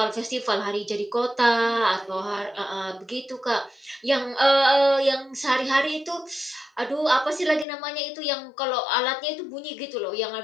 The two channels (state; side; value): drops out; right; at 7.7 s